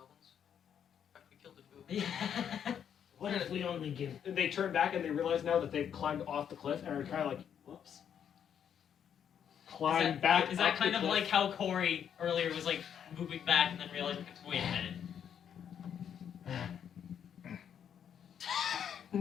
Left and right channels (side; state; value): right; quieter; 8.5 dB